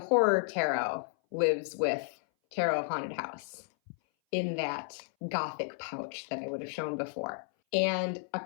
Tarot lives with Tarot of Haunted House in that gothic pouch that I would have shown before. And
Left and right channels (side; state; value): right; silent; 56 dB below the other